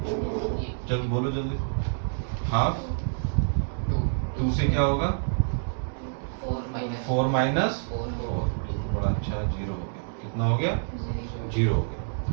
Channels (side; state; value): left; silent; digital silence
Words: चल बोलो जल्दी। हाफ 2 से क्या होगा, 4 माइनस 4। बड़ा अच्छा है, 0 हो गया। कितना हो गया, 0 हो गया।